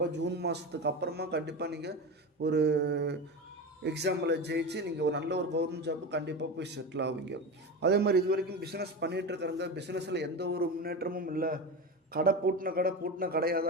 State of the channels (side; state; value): both; normal; correlation 0.23